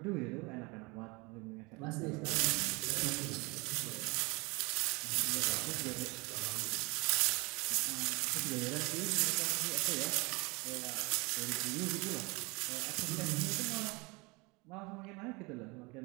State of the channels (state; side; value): quieter; left; 26.4 dB